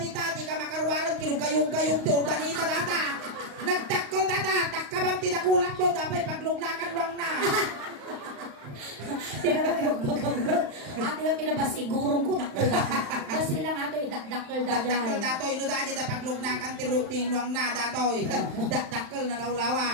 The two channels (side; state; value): left; late; 35 ms